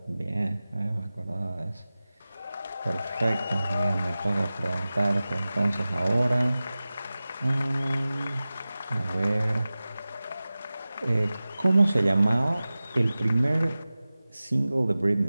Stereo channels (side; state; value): both; inverted; correlation -0.97